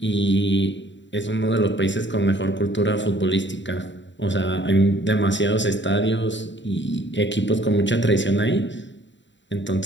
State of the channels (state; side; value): late; right; 0.53 ms